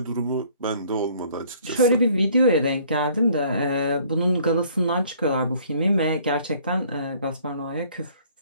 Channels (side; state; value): both; inverted; correlation -0.58